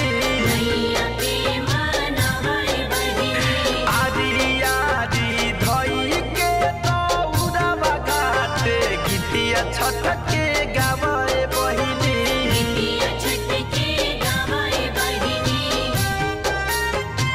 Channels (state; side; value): identical; both; correlation 1.00